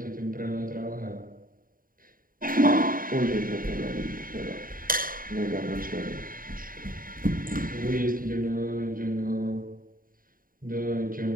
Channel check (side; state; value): left; late; 0.41 ms